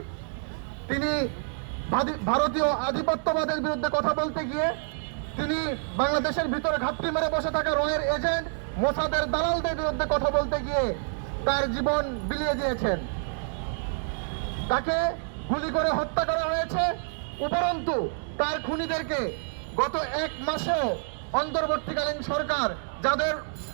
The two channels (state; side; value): silent; left; 59 dB below the other